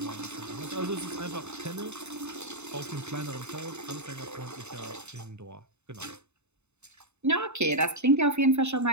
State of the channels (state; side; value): late; left; 0.82 ms